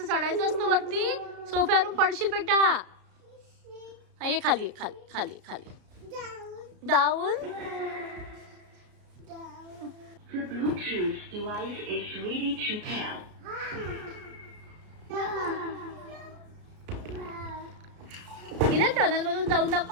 चढायचं असतं वरती. सोफ्यावरून पडशील बेटा. हा ये खाली. खाली खाली खाली. Down. The Bluetooth device is ready to pair. इना टनल मधून जाऊन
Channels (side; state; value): left; late; 33 ms